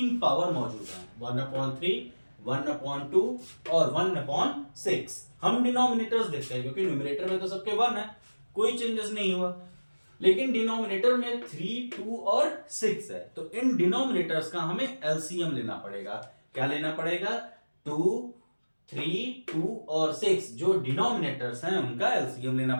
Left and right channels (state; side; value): inverted; both; correlation -1.00